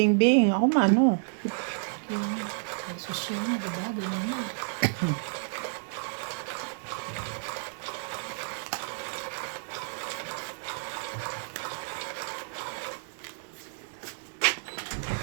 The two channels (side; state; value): left; silent; digital silence